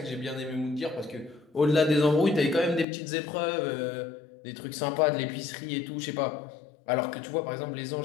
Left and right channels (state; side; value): drops out; right; at 2.9 s